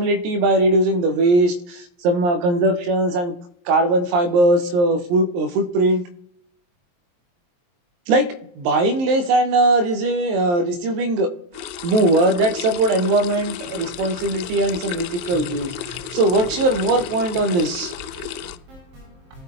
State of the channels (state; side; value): late; left; 23 ms